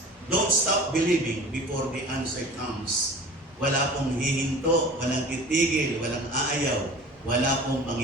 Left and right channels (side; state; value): both; normal; correlation 0.40